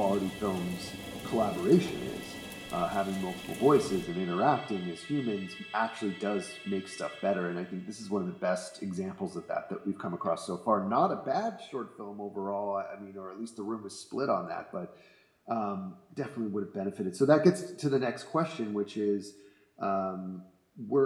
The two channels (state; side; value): identical; both; correlation 1.00